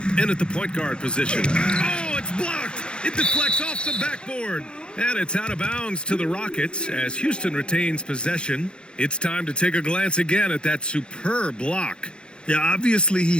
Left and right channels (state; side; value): late; right; 0.052 ms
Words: in at the point guard position. Oh, it's blocked! It deflects off the backboard. And it's out of bounds to the Rockets as Houston retains possession. It's time to take a glance again at that superb block. Yeah, obviously he